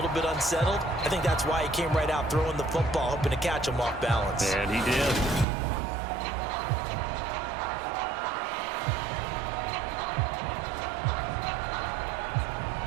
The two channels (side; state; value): left; drops out; at 5.5 s